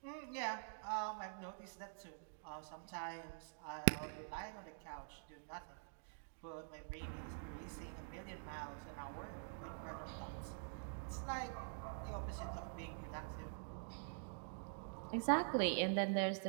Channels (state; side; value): silent; left; digital silence